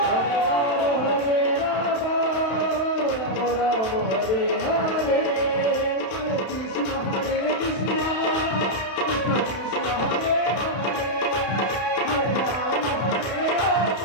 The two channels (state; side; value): late; right; 31 ms